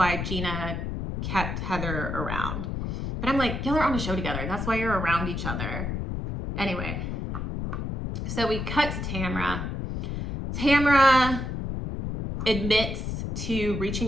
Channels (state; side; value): noise; left; rumble, 3 dB below the sound